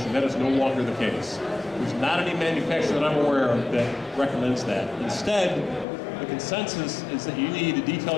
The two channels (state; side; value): drops out; right; at 5.9 s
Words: That is no longer the case. There's not any manufacturer that I'm aware of that recommends that. Instead, the consensus is that you need to